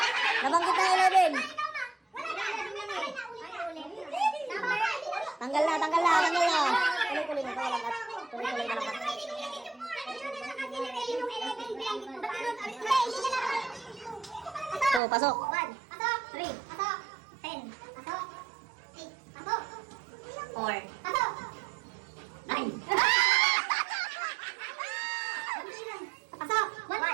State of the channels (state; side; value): drops out; left; at 15.0 s